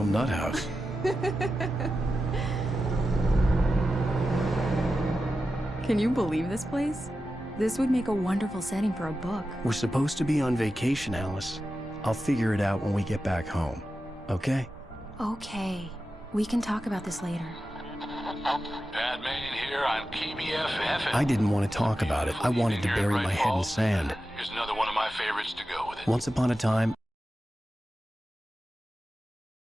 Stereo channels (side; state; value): both; normal; correlation 0.92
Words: nut house. Can you believe this place? This would make a wonderful setting for a book. We're supposed to be on vacation, Alice. I'll figure it out when we get back home, okay? Okay. We can talk about this later. Batman here on PBFF. I didn't want to talk about it. I wanted to bury my head in sand. Here's another one of my favorites to go with it. Once upon a time,